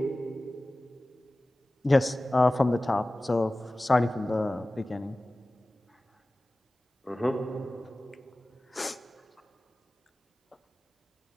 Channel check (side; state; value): both; normal; correlation 0.97